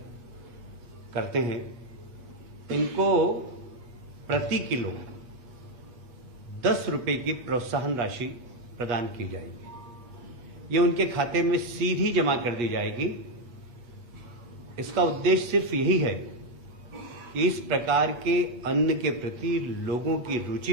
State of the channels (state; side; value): late; left; 8.3 ms